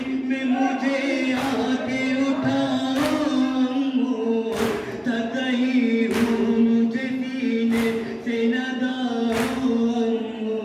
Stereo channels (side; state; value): both; identical; correlation 1.00